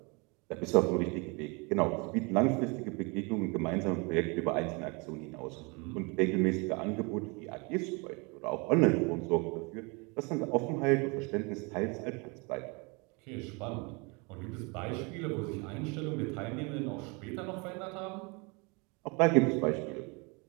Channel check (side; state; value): left; quieter; 29.9 dB